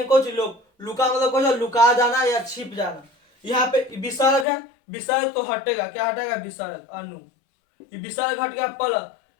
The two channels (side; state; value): right; drops out; at 4.5 s